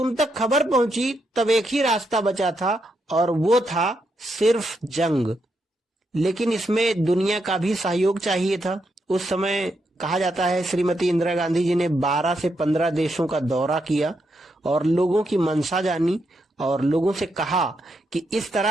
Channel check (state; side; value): normal; both; correlation 0.81